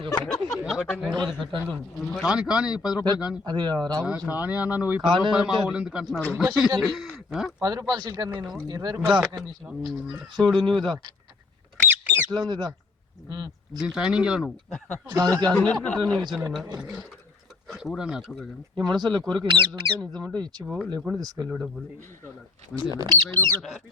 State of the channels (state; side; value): quieter; right; 3.9 dB